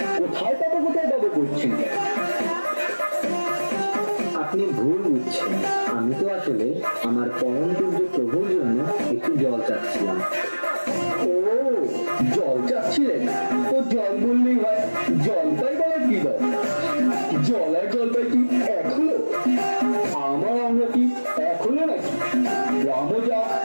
কোথায় পাবো করছেন? আপনি ভুল বুঝছেন, আমি তো আসলে আমার পরম পূজ্য প্রভুর জন্য একটু জল চাচ্ছিলাম। ও, জল চাচ্ছিলেন? তো জল বললেই হয়, জল পাই বলার কি দর? জল আর জল পাই কি এক হলো? আমরা কি এক হলো নাকি? রাম যা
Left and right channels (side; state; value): both; inverted; correlation -1.00